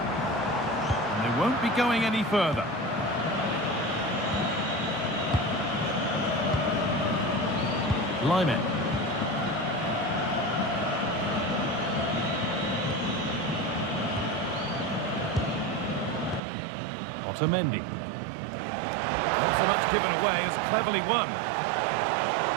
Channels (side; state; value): left; drops out; at 16.4 s